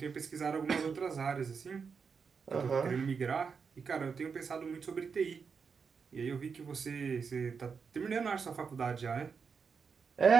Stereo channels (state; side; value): quieter; left; 5.8 dB